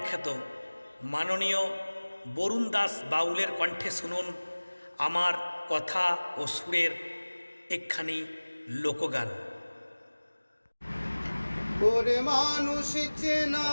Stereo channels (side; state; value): both; inverted; correlation -1.00